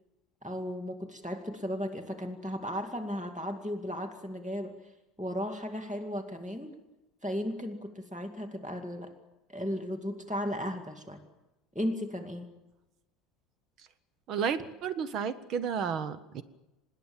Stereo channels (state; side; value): normal; both; correlation 0.61